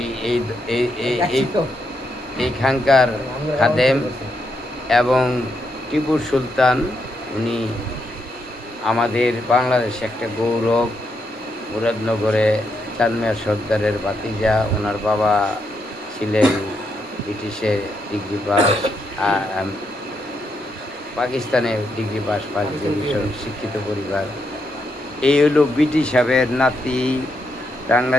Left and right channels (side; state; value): both; normal; correlation 0.80